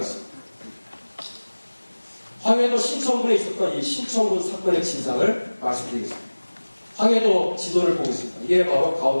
황해도 신천군에 있었던 이 신천군 사건의 진상을 말씀드리겠습니다. 황해도 지도를 보고 있습니다. 이게 바로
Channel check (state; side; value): inverted; both; correlation -1.00